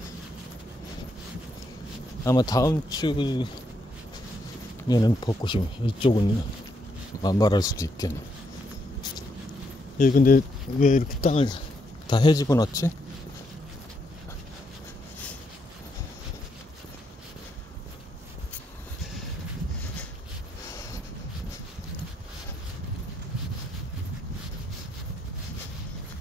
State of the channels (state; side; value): normal; both; correlation 0.77